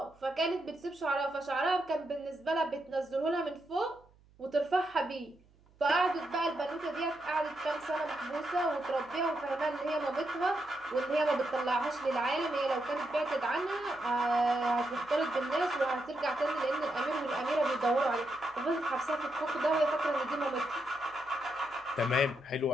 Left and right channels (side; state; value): right; noise; hum, 29 dB below the sound